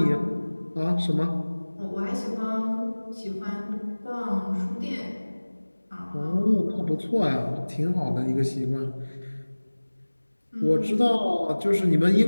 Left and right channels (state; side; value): inverted; both; correlation -1.00